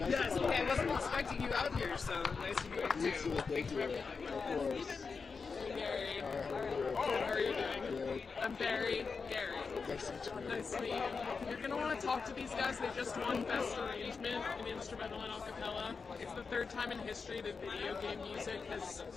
Yes, okay, I wasn't expecting you out here, so nice to meet you too. Thank you for everything. Gary. How are you doing? I'm Barry. Gary. Nice to meet you. You're going to want to talk to these guys. They just won Best Arrangement in Instrumental and Acapella. It's the third time in history that video game music has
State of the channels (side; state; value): right; quieter; 5.0 dB